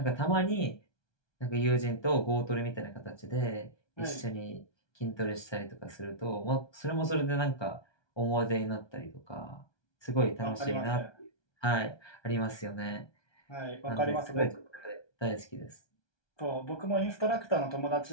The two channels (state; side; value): late; right; 1.2 ms